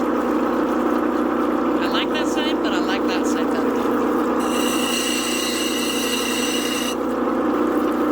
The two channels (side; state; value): left; noise; hum, 20 dB below the sound